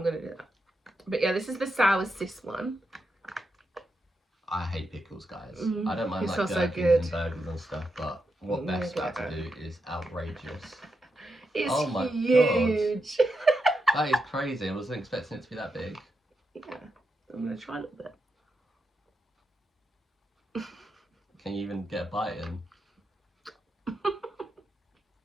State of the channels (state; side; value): normal; both; correlation 0.85